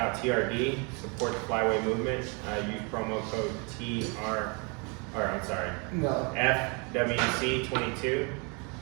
TRD, support the flyway movement. Use promo code FWC22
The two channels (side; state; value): left; quieter; 32.5 dB